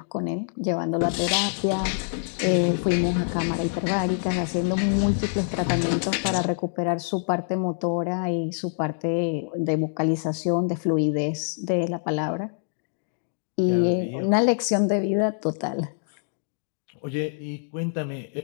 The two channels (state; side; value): silent; right; digital silence